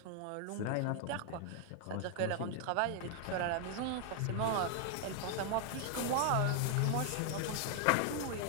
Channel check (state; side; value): different; both; correlation 0.00